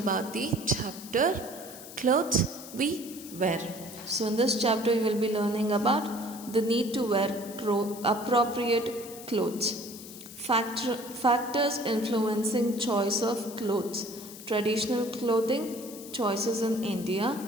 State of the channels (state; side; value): noise; left; hiss, 15 dB below the sound